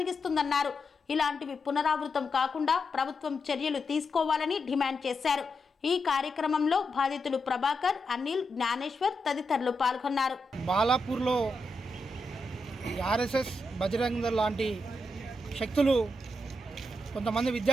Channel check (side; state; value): both; normal; correlation 0.85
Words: ఇలాంటివి పునరావృతం కాకుండా ప్రభుత్వం చర్యలు తీసుకోవాలని డిమాండ్ చేశారు. ఈ కార్యక్రమంలో బాధితులు ప్రభాకర్, అనిల్, జ్ఞానేశ్వర్ తదితరులు పాల్గొన్నారు. బాలాపూర్లో ఆర్ఎస్ఎస్, బజరంగ దళ్ లాంటి శక్తులు కొంతమంది